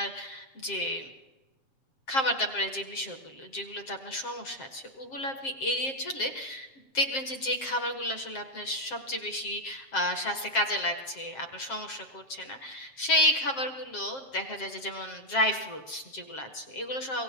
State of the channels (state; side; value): late; right; 7.5 ms